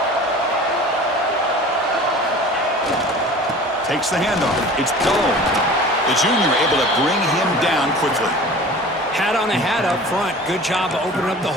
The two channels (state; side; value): normal; both; correlation 0.41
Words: Takes the handoff. It's Dome. The junior able to bring him down quickly. Hat on a hat up front. Good job of opening up the